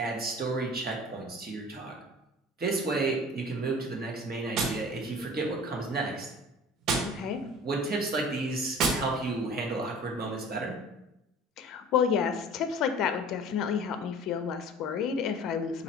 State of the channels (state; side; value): normal; both; correlation 0.42